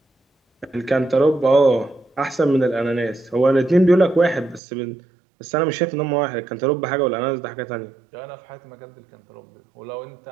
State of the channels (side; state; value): left; drops out; at 4.6 s